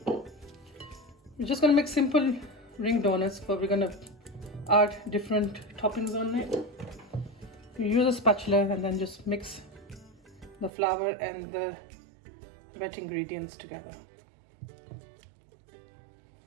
We're just going to make simple ring donuts, but we're going to add different toppings on it. You use a spatula and then just mix the flour and the wet ingredients together.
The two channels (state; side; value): drops out; left; at 10.7 s